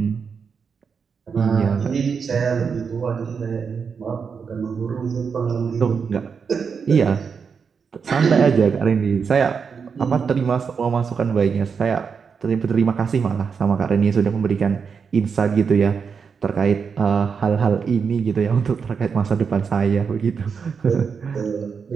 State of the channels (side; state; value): left; quieter; 6.0 dB